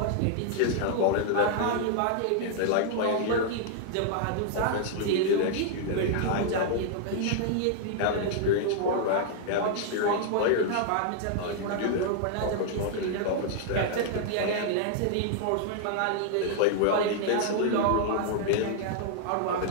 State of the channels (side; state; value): both; different; correlation -0.01